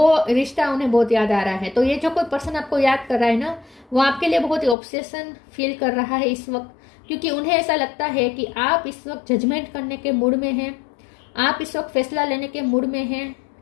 रिश्ता उन्हें बहुत याद आ रहा है। तो ये जो कोई पर्सन आपको याद कर रहा है ना, वो आपके लिए बहुत ही ऑब्सेशन फील कर रहा है इस वक्त, क्योंकि उन्हें ऐसा लगता है कि आप इस वक्त जजमेंट करने के मूड में हैं, आप इस वक्त फैसला लेने के मूड में हैं,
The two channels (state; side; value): drops out; right; at 4.8 s